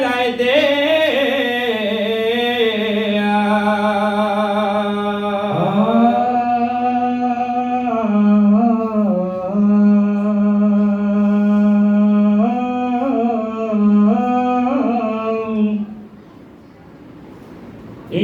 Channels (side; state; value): both; identical; correlation 1.00